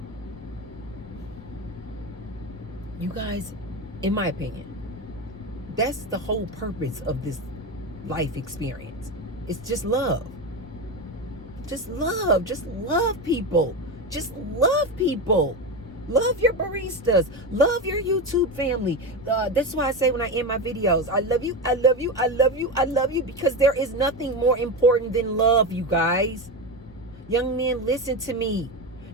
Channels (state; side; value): normal; both; correlation 0.18